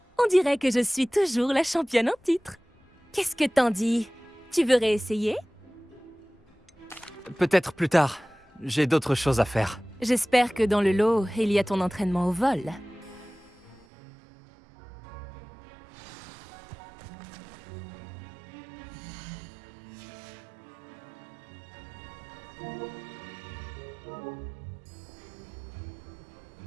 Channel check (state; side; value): drops out; left; at 13.9 s